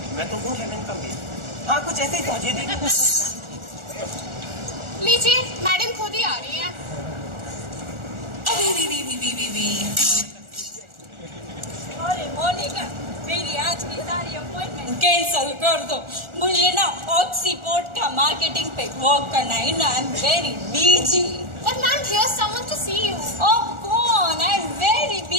मैं तो हूँ हेवन का मेल। हाँ, कुछ ऐसे ही समझिए देवी। लीजिए, मैडम खुद ही आ रही है। अरे मोनिका, मेरी आज की सारी अपॉइंटमेंट कैंसिल कर दो। मुझे ना ऑक्सीपोर्ट का मार्केटिंग पे वर्क करना है ना, I am very busy. But ma'am, here's someone to see you. Oh, go on, I am very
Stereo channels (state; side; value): late; left; 1.4 ms